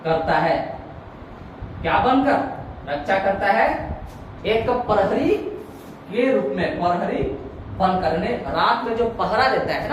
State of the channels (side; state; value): both; identical; correlation 1.00